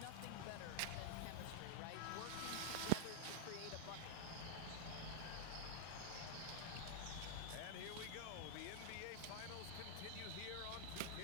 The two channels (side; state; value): both; different; correlation -0.01